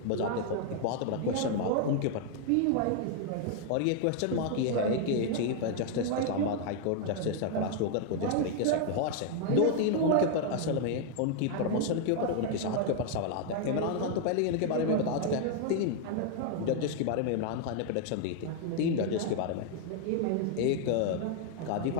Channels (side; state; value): both; different; correlation 0.00